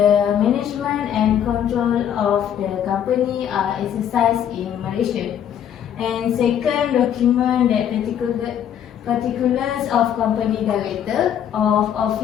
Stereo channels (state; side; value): quieter; right; 9.5 dB